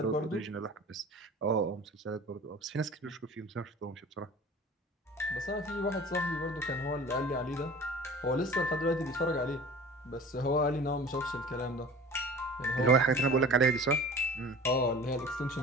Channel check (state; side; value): normal; both; correlation 0.42